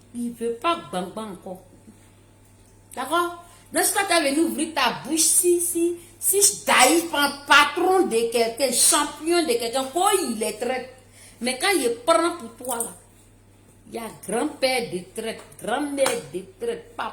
Il ne veut pas Gbagbo encore. D'accord? Donc, si tu as venu ouvrir ta bouche, si Daïf, patron de quelqu'un, champion de quelqu'un, quoi il est traite. Mais quand il prend pour toi là, il y a grand-père de traite, grand-mère de traite,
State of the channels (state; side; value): identical; both; correlation 1.00